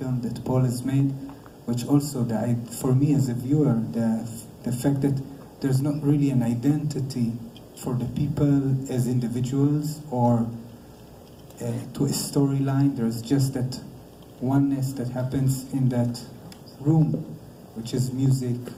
that Paul has made, which also, for me as a viewer, the fact that there's not really an identity for the people as individuals or to a storyline. There's just that oneness that happens in that room, which is music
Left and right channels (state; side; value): identical; both; correlation 1.00